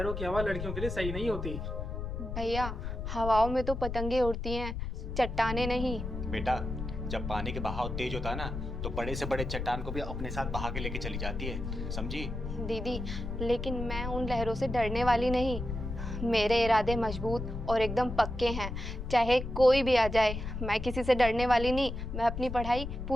की हवा लड़कियों के लिए सही नहीं होती। भैया, हवाओं में तो पतंगे उड़ती हैं, चट्टाने नहीं। बेटा, जब पानी के बहाव तेज होता है ना, तो बड़े से बड़े चट्टान को भी अपने साथ बहा के लेके चली जाती है, समझी? दीदी लेकिन मैं उन लहरों से डरने वाली नहीं, मेरे इरादे मजबूत और एकदम पक्के हैं। चाहे कोई भी आ जाए, मैं किसी से डरने वाली नहीं, मैं अपनी पढ़ाई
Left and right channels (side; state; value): left; noise; rumble, 5 dB below the sound